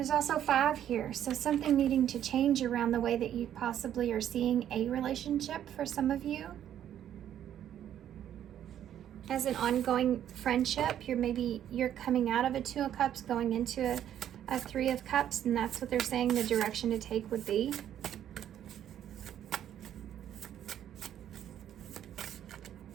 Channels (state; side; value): quieter; left; 10.6 dB